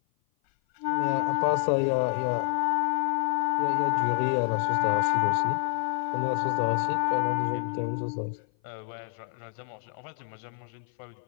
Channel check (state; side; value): silent; right; 56 dB below the other